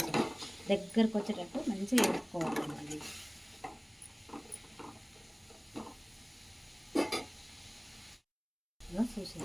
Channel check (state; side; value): identical; both; correlation 1.00